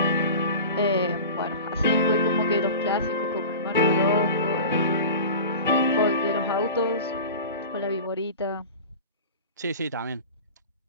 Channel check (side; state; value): both; inverted; correlation -0.34